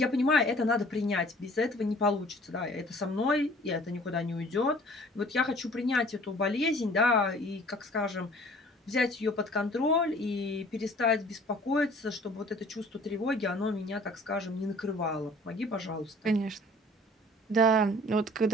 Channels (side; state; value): both; normal; correlation 0.51